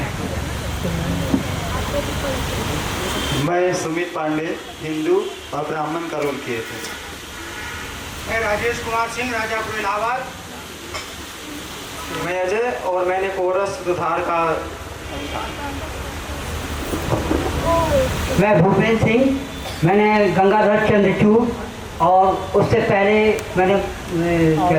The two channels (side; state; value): both; identical; correlation 1.00